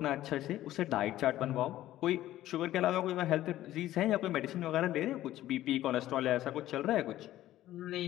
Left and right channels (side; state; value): right; quieter; 14.2 dB